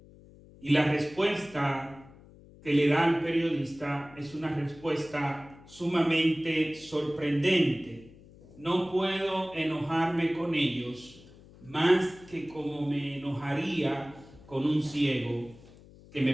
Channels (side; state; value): left; noise; hum, 22 dB below the sound